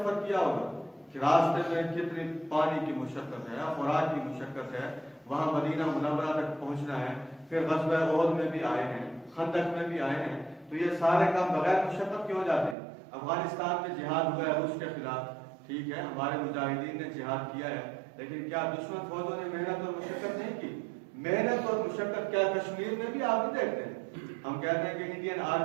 کیا ہوگا کہ راستے میں کتنی پانی کی مشقت ہے, خوراک کی مشقت ہے, وہاں مدینہ منورہ تک پہنچنا ہے. پھر غزوہ احد میں بھی آئے ہیں, خندق میں بھی آئے ہیں. تو یہ سارے کام بغیر مشقت کیوں جاتے ہیں؟ افغانستان میں جہاد ہوا ہے روس کے خلاف, ٹھیک ہے ہمارے مجاہدین نے جہاد کیا ہے, لیکن کیا دشمن فوجوں نے محنت اور مشقت نہیں کی؟ محنت اور مشقت کیا کشمیر میں بھی آپ بھی دیکھتے ہیں. ہم کہتے ہیں کہ انڈین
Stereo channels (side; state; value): left; drops out; at 12.8 s